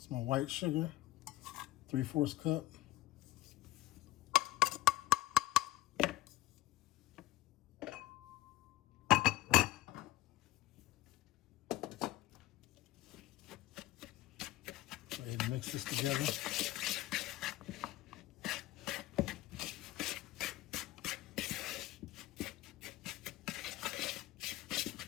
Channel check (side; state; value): right; quieter; 16.1 dB